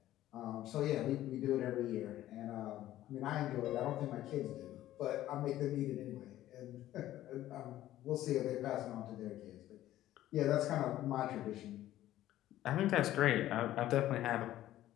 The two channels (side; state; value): right; quieter; 13.9 dB